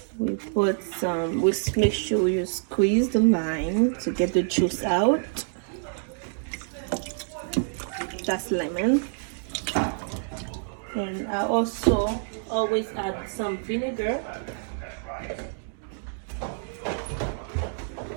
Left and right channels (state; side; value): silent; left; digital silence